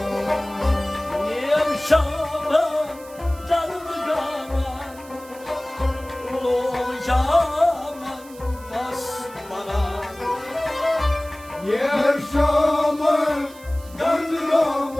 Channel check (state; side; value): noise; right; hiss, 22 dB below the sound